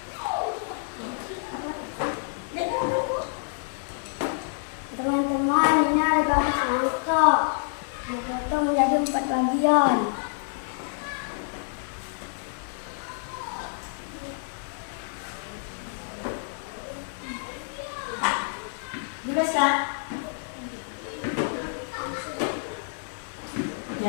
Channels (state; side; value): silent; right; digital silence